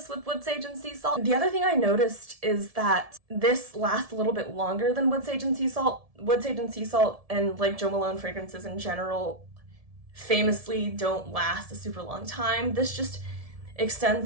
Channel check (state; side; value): late; left; 1.7 ms